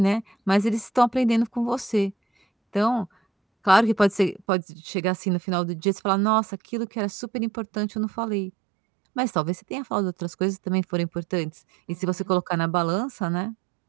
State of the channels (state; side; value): drops out; left; at 4.4 s